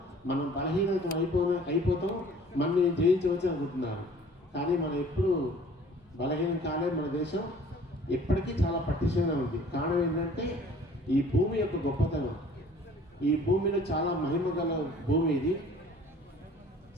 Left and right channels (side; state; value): both; normal; correlation 0.51